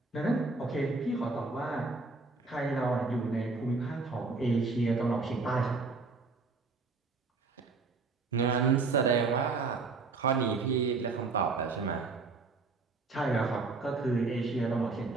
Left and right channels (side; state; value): left; quieter; 4.1 dB